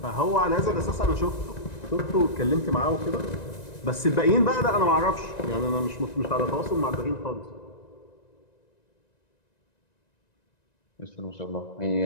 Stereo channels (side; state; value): right; late; 1.9 ms